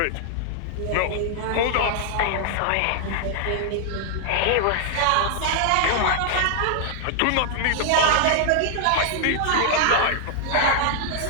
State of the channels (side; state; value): both; different; correlation -0.01